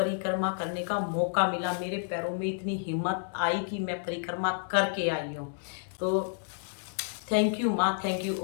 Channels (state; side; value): silent; right; 58 dB below the other